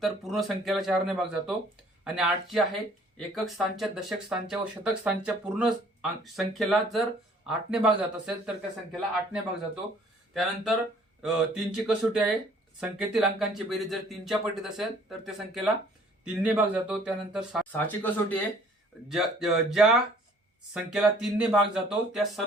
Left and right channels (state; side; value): normal; both; correlation 0.57